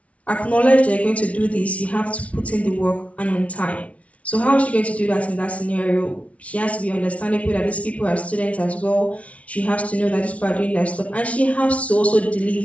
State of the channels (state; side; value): late; right; 0.065 ms